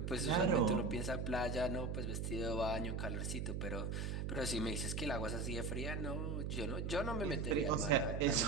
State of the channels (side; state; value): right; noise; hum, 2 dB below the sound